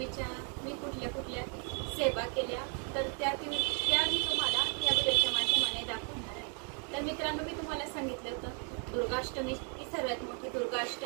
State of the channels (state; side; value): quieter; left; 39.5 dB